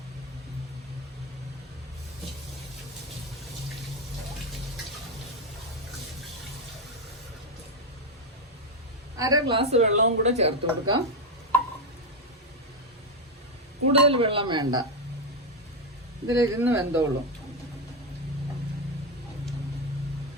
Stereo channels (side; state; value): both; normal; correlation 0.07